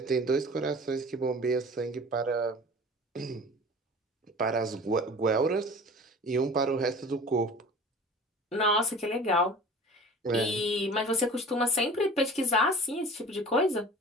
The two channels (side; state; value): both; normal; correlation 0.42